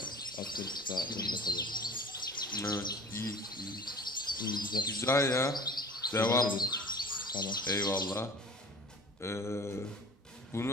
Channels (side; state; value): both; normal; correlation 0.43